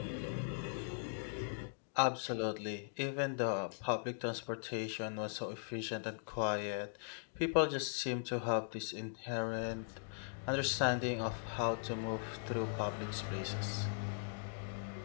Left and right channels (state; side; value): silent; right; digital silence